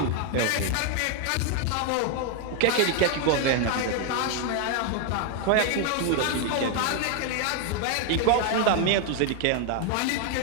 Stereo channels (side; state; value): both; different; correlation 0.01